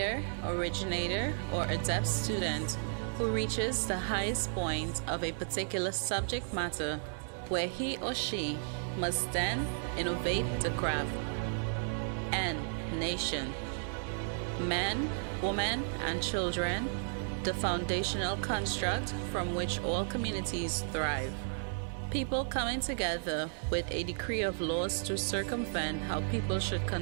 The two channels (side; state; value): left; silent; digital silence